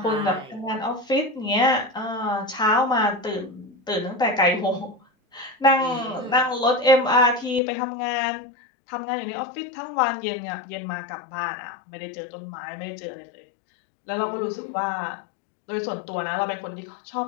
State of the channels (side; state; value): right; drops out; at 7.6 s